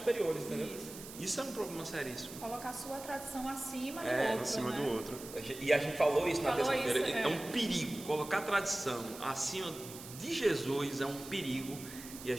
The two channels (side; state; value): right; noise; hiss, 13 dB below the sound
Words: entendeu? Isso é um problema seríssimo. Colocar a sua tradição acima do É, outro. Acima né? do outro. E a gente falou isso na Falou terça-feira. isso, né? É um perigo. Colocar a tradição acima de Jesus é um perigo. E a